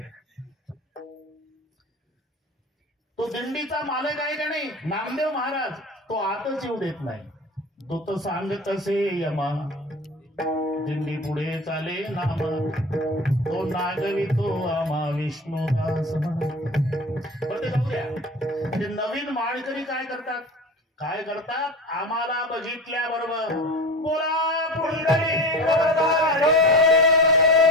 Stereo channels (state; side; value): normal; both; correlation 0.32